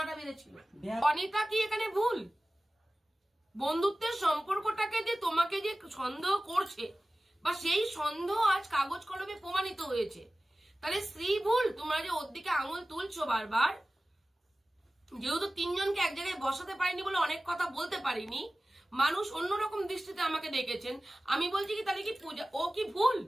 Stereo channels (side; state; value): both; normal; correlation 0.97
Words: বেড়েছিল। অনিতা কি এখানে ভুল? বন্ধুত্বের সম্পর্কটাকে যে তোমাকে যে সন্দেহ করছে, বা সেই সন্দেহ আজ কাগজ কলমে প্রমাণিত হয়েছে, তাহলে স্ত্রী ভুল? তোমরা যে ওর দিকে আঙুল তুলছো বারবার, যেহেতু তিনজনকে এক জায়গায় বসাতে পারিনি বলে অনেক কথা বলতে পারিনি, মানুষ অন্যরকম দৃষ্টিতে আমাকে দেখেছেন, আমি বলছি কি তাহলে কি পূজা ও কি ভুল?